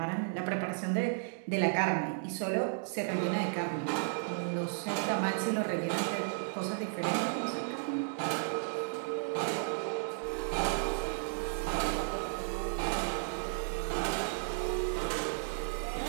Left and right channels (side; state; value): left; silent; digital silence